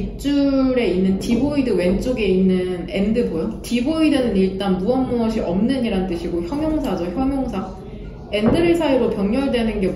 있는 디보이드 왼쪽에 있는 and 보여? 디보이드는 일단 무엇이 없는 이란 뜻이고 형용사죠. 형용사. and를 사이로 병렬되는 게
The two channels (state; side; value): identical; both; correlation 1.00